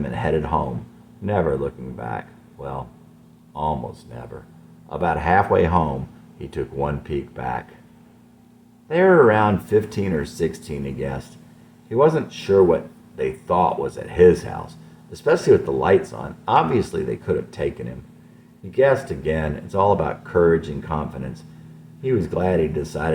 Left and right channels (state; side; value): identical; both; correlation 1.00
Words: and headed home, never looking back. Well, almost never. About halfway home, he took one peek back. They were around 15 or 16, he guessed. He wasn't sure what they thought was at his house, especially with the lights on. Obviously, they could have taken him. He guessed again. It's all about courage and confidence. He was glad he